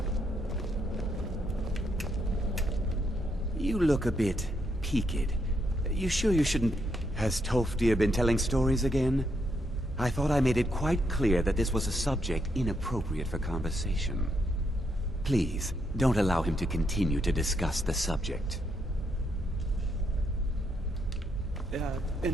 You look a bit peaked. You sure you shouldn't... Has Tolfdir been telling stories again? I thought I made it quite clear that this was a subject inappropriate for conversation. Please, don't allow him to continue to discuss the subject.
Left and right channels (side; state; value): both; normal; correlation 0.77